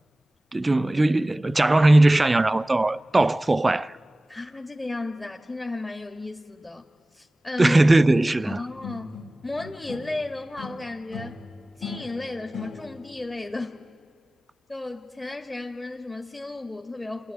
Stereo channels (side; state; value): both; normal; correlation 0.98